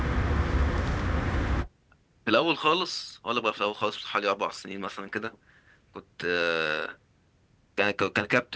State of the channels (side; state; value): both; identical; correlation 1.00